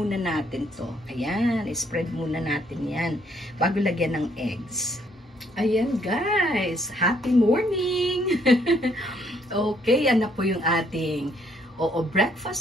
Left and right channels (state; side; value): normal; both; correlation 0.68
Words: natin to. Ayan, spread muna natin yan bago lagyan ng eggs. Ayan, guys. Happy morning! Okay, yan na po yung ating